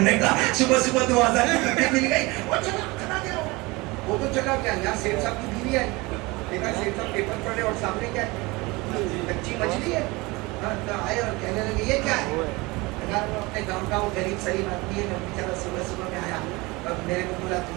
کا, صبح صبح 2000 کی مل گئی. وہ تو چلا گیا. یہاں سیٹ صاحب کی بیوی ہے, دیکھا سیٹ صاحب پیپر پڑھے اور سامنے کیا ہے, کچی مچھلی ہے. آئے اور کہنے لگے یہ کیا ہے, اپنے گاؤں کا وہ غریب صحیح آدمی ہے, بیچارہ صبح صبح میں آیا, میرے کو بولا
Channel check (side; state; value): left; quieter; 23.6 dB